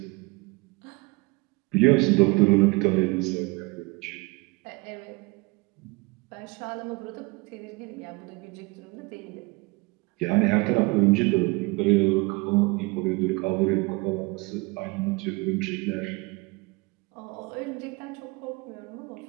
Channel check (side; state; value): left; quieter; 25.9 dB